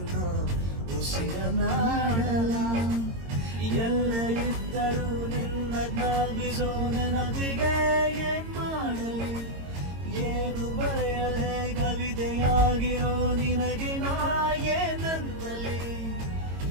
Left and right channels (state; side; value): late; left; 22 ms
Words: ಉಸಿರನಾಡಲ. ಎಲ್ಲ ಇದ್ದರೂ ನಿನ್ನ ಜ್ಞಾಪಿಸೋ ನೆನಪಿಗೆ ಏನ್ ಮಾಡಲಿ, ಏನು ಬರೆಯದೆ ಕವಿತೆಯಾಗಿರೋ ನಿನಗೆ ನಾ ಏನಂತಲಿ.